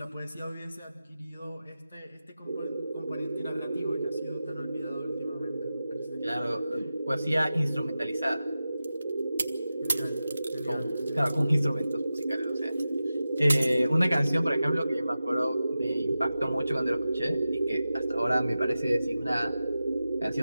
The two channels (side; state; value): both; inverted; correlation -0.93